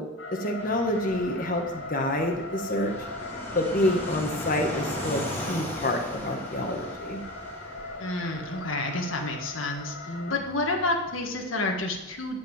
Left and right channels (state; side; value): normal; both; correlation 0.25